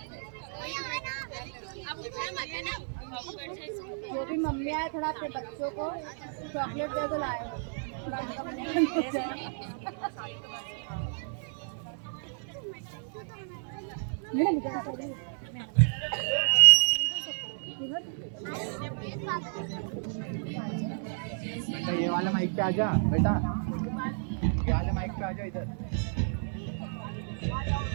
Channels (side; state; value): left; silent; 57 dB below the other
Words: जो भी मम्मी आए थोड़ा अपने बच्चों को चॉकलेट दे दो लाए ये वाला माइक पे आजा बेटा, ये वाले माइक पे आजा इधर।